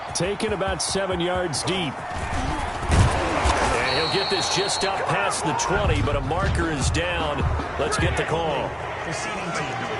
Taken about 7 yards deep. And he'll get this just up past the 20, but a marker is down. Let's get the call.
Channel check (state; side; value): identical; both; correlation 1.00